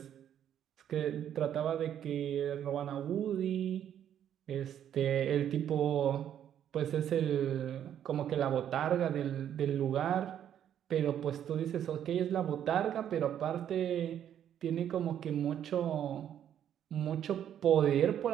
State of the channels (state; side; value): quieter; left; 10.0 dB